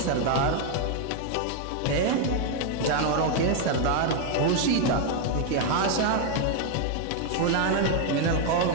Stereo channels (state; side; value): different; both; correlation 0.01